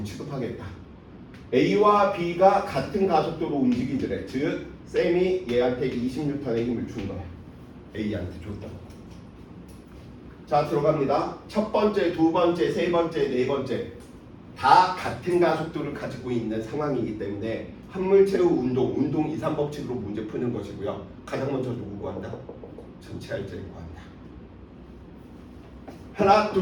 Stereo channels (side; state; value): both; identical; correlation 1.00